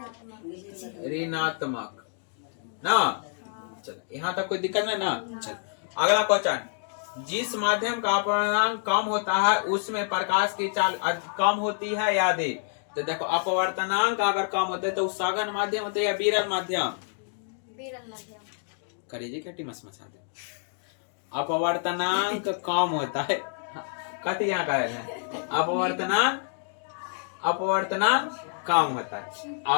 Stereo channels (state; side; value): silent; right; digital silence